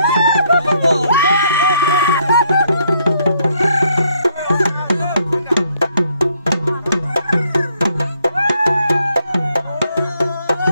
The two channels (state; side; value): inverted; both; correlation -0.70